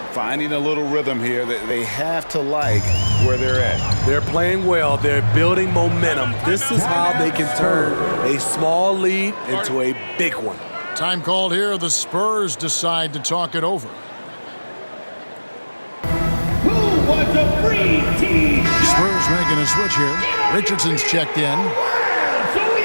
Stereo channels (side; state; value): both; inverted; correlation -1.00